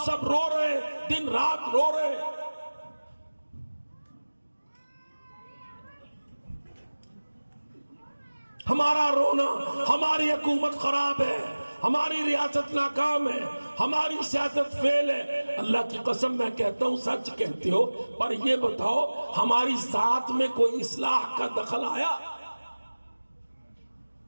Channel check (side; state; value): both; inverted; correlation -1.00